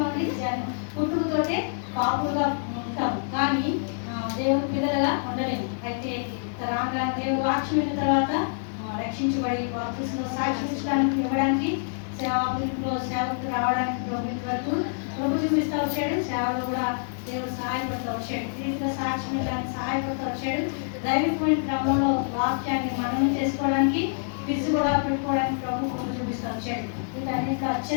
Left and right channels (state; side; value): silent; right; 61 dB below the other